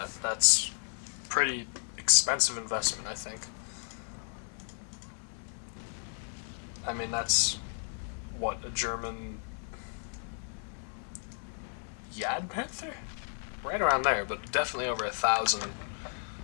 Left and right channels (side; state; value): right; silent; 56 dB below the other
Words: That's pretty expensive investment, I think. I mean, that's what, a German Yad Panther? Right around there, but definitely over 1,000